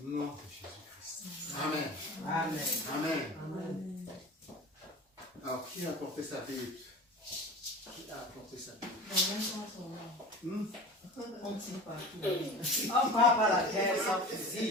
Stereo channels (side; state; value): both; normal; correlation 0.36